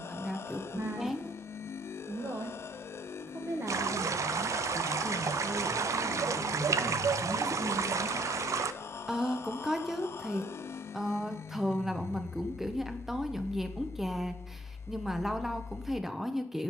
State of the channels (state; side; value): normal; both; correlation 0.62